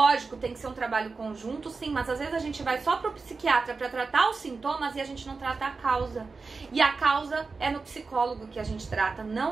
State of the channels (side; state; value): left; quieter; 4.3 dB